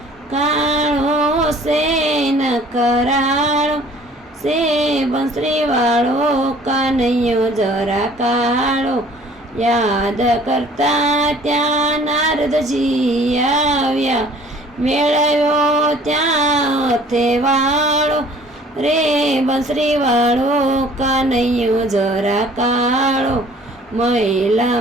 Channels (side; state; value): both; normal; correlation 0.53